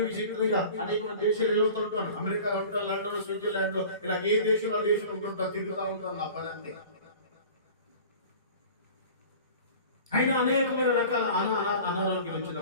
విచిత్రంగా అనేక దేశాలు వెళ్తుంటాను. అమెరికాలో ఉంటాను, లండన్, స్విట్జర్లాండ్ లో, ఇలా ఏ దేశంలో దేశం ఉంటుంటాను, తిరుగుతూ ఉంటాను. నా పని అంతే. అయినా అనేకమైన రకాల అనారోగ్యం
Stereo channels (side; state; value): both; inverted; correlation -0.42